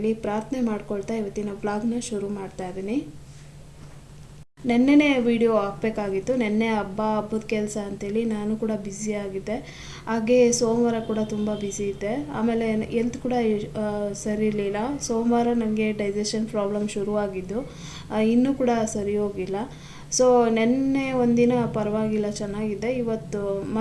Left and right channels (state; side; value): identical; both; correlation 1.00